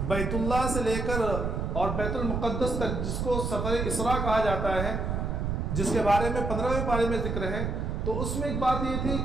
بیت اللہ سے لے کر اور بیت المقدس تک، جس کو سفر اسراء کہا جاتا ہے، جس کے بارے میں 15ویں پارے میں ذکر ہے، تو اس میں ایک بات یہ تھی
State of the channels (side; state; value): right; noise; rumble, 1 dB below the sound